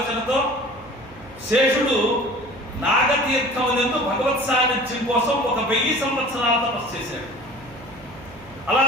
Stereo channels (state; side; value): noise; right; hum, 21 dB below the sound